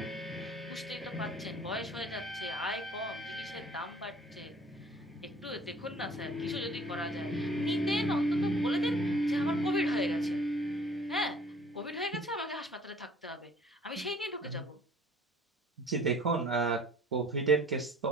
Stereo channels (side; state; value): both; normal; correlation 0.53